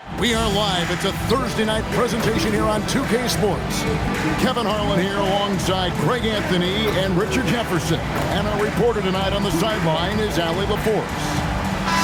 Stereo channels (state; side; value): identical; both; correlation 1.00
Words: We are live. It's a Thursday night presentation here on 2K Sports. Kevin Harlan here alongside Greg Anthony and Richard Jefferson. And our reporter tonight on the sideline is Allie LaForce.